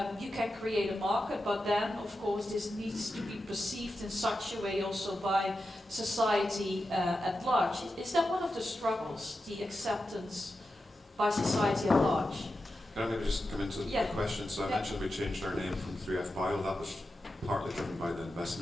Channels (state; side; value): normal; both; correlation 0.90